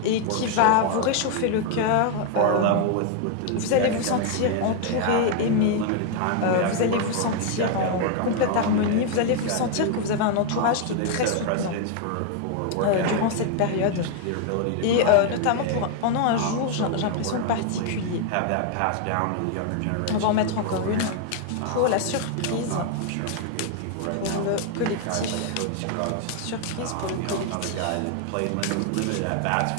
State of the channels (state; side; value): different; both; correlation 0.00